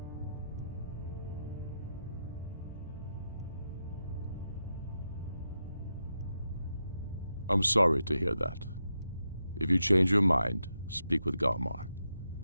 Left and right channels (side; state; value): both; inverted; correlation -0.86